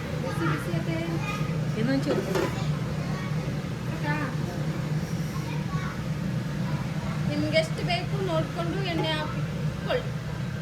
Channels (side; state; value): both; identical; correlation 1.00